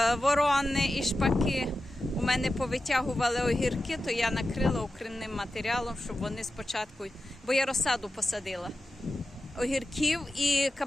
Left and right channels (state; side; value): normal; both; correlation 0.92